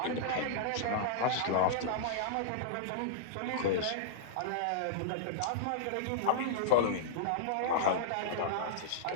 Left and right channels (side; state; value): both; different; correlation -0.03